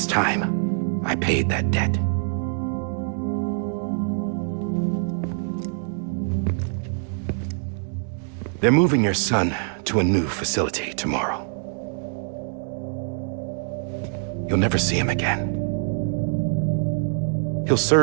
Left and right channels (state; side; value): silent; left; 61 dB below the other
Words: time I paid that debt. They're moving your son to a new facility tomorrow. You'll never see him again. He'll